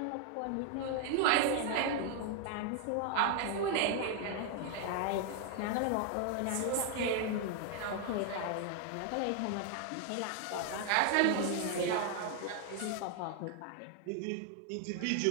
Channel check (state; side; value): different; both; correlation 0.00